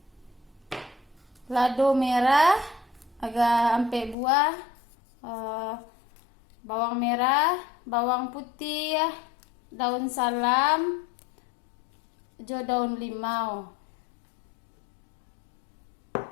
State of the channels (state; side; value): drops out; right; at 4.2 s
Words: lado merah agak ampe buah, bawang merah, bawang putih, daun salam, jo daun limau.